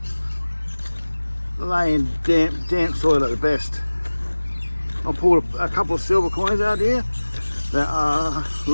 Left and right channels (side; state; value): both; inverted; correlation -1.00